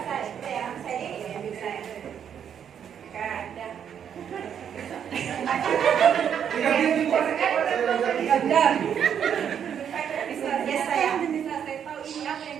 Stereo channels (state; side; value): quieter; left; 8.5 dB